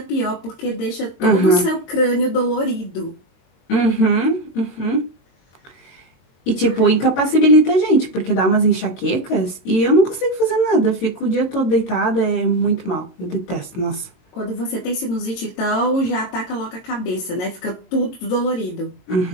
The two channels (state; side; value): late; right; 22 ms